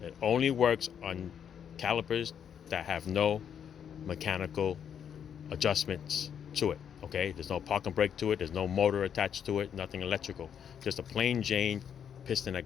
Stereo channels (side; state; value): right; quieter; 8.3 dB